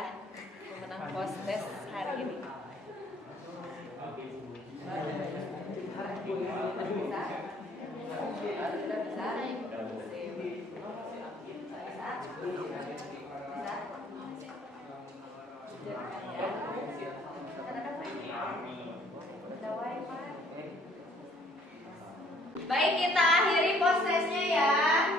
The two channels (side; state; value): both; normal; correlation 0.60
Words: pemenang post test hari ini. Baik, kita akhiri post testnya ya.